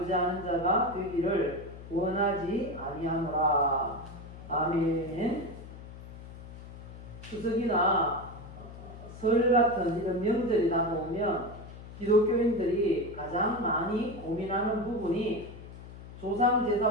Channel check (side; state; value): left; noise; hum, 14 dB below the sound